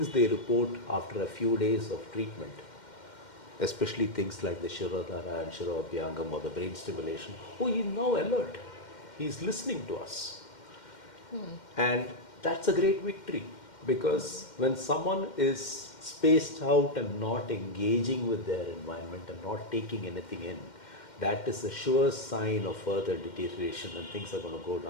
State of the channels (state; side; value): late; right; 2.1 ms